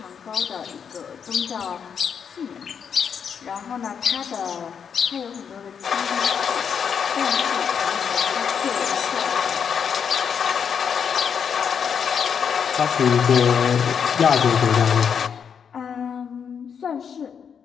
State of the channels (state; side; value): quieter; right; 7.1 dB